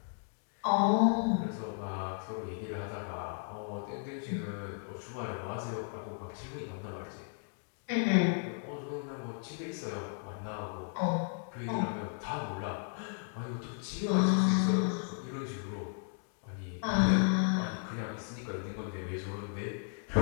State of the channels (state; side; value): silent; right; 55 dB below the other